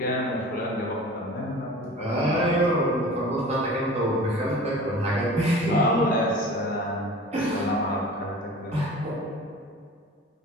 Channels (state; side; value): normal; both; correlation 0.40